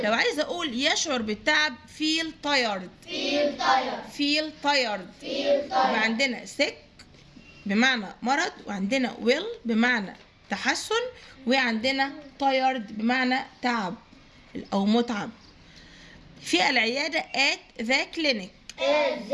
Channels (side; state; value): both; identical; correlation 1.00